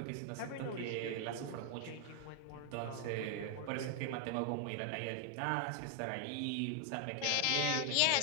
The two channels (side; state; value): both; different; correlation 0.00